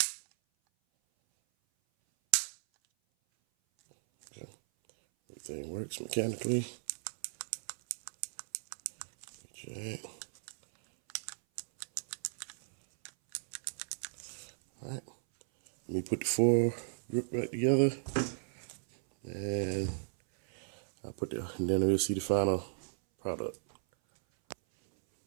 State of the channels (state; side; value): silent; left; 54 dB below the other